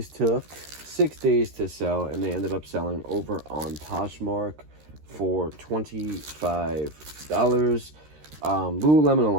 took 6 days to sell, and they ended up selling over on Poshmark for $25. Lululemon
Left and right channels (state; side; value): late; left; 13 ms